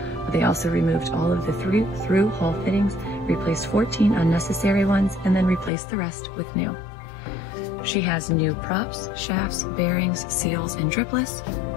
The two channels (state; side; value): drops out; right; at 5.7 s